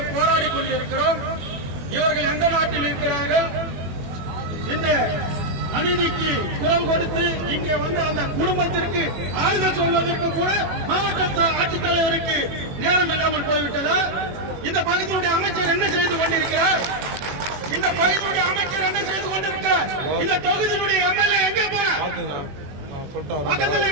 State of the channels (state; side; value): late; left; 21 ms